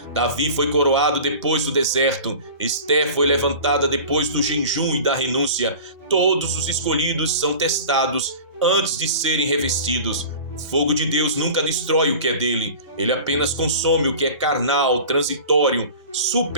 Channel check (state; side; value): inverted; both; correlation -0.38